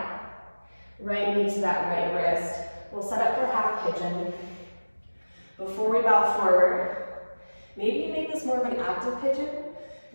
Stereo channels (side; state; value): both; inverted; correlation -1.00